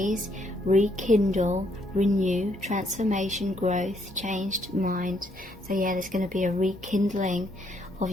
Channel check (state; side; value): normal; both; correlation 0.71